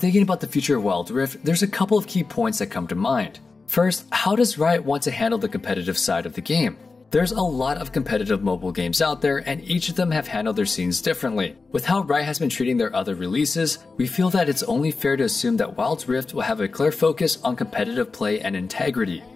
thinking about the future of Wild Rift, there's a couple of key points that come to mind. First, how does Riot want to handle the competitive side of the game? There's a lot of competitive mobile games out there, and each of them have handled their scenes differently. With how Riot has been treating their other releases, we feel that it's only fair to assume that Wild Rift will have a clear focus on competitive play and integrity.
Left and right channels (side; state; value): right; quieter; 4.1 dB